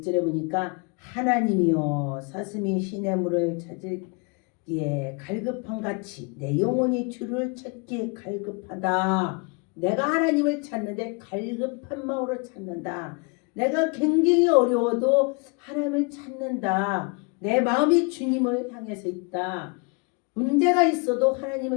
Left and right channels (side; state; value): right; quieter; 32.0 dB